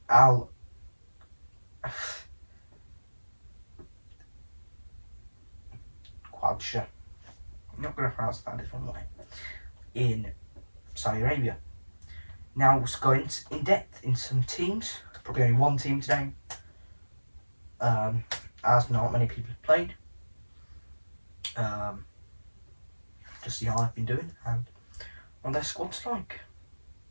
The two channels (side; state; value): both; inverted; correlation -1.00